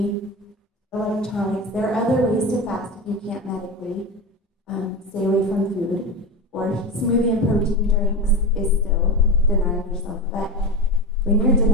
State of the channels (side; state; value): both; normal; correlation 0.22